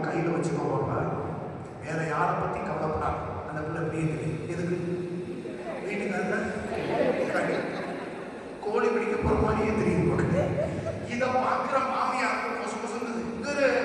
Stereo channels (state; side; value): identical; both; correlation 1.00